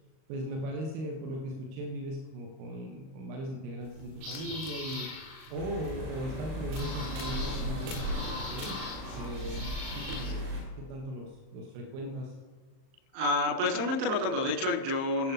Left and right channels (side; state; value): left; late; 38 ms